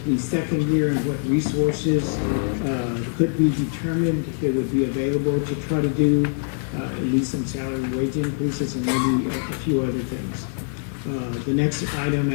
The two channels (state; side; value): silent; right; 60 dB below the other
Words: the second year and what resources could be determined that would be available to try to do at least some salary and wage increases and maybe a few other things. The next item